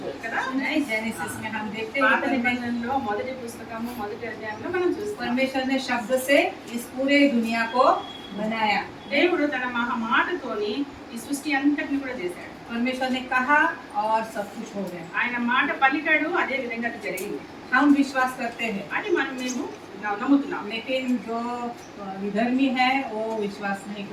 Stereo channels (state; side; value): identical; both; correlation 1.00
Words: కదా. नहीं, जेनेसिस में हम देखते పాత हैं నిబంధనలో మొదటి పుస్తకము మొదటి అధ్యాయంలో మనం చూస్తాం. परमेश्वर ने शब्द से इस पूरे दुनिया को बनाया. దేవుడు తన మాటతోని ఈ సృష్టి అంతటిని కూడా చేశాడు. परमेश्वर ने कहा और सब कुछ हो गया. ఆయన మాట పలికాడు, అదే విధంగా అది జరిగింది. हम विश्वास करते हैं, అని మేము నమ్ముతున్నాం. लेकिन जो विधर्मी है वो विश्वास नहीं